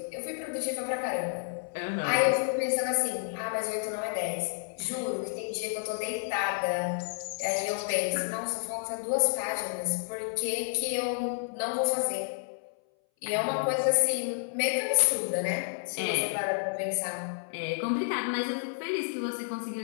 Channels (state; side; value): silent; right; 58 dB below the other